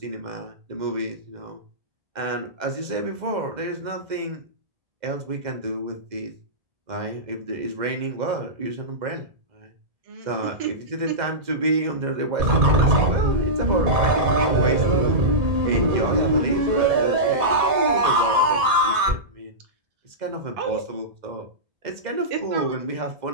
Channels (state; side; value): late; left; 2.0 ms